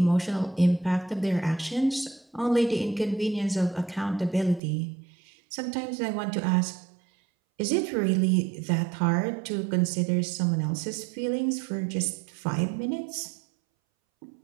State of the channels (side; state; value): left; drops out; at 4.6 s